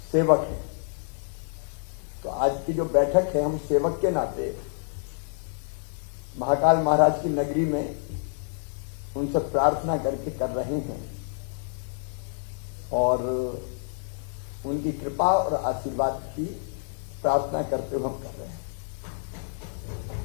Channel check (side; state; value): right; silent; digital silence